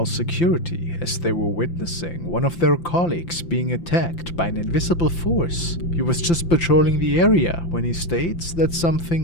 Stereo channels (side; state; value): right; late; 5.8 ms